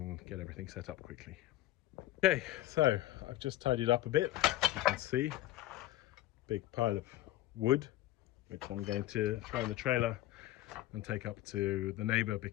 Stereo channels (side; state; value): right; quieter; 15.4 dB